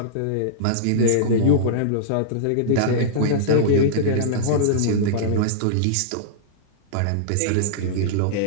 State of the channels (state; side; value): different; both; correlation -0.02